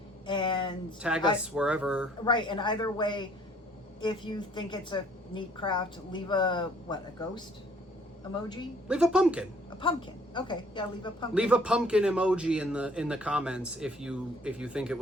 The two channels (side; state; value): both; normal; correlation 0.59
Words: and tag us wherever. Right, and either way, if you think it's a neat craft, leave a ghost emoji? Leave a pumpkin. A pumpkin. Okay, yeah, leave a pumpkin. Leave a pumpkin emoji in the comments if you think it